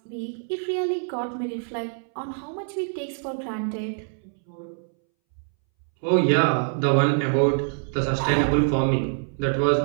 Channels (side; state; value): left; silent; 62 dB below the other